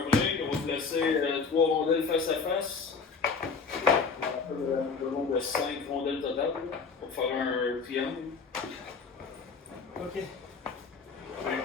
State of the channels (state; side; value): quieter; right; 5.1 dB